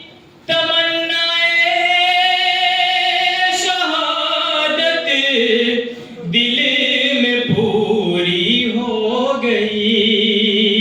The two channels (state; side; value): identical; both; correlation 1.00